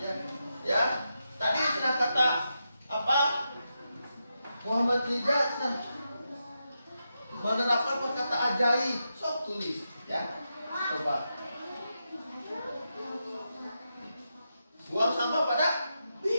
Ya. Tadi sudah kata apa? Muhammad Rijal menerapkan perkata ajaib. Sok tulis, ya. Coba. Buang sampah pada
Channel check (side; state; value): both; inverted; correlation -0.87